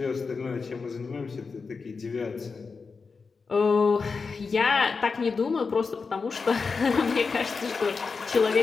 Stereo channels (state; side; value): quieter; right; 4.8 dB